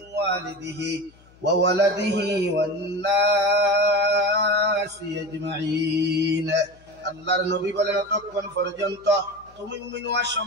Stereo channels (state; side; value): noise; left; hum, 28 dB below the sound